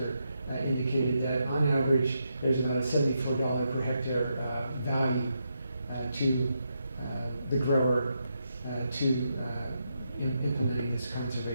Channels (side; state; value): both; inverted; correlation -0.83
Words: indicated that on average there's about a $74 per hectare value to the grower to implementing this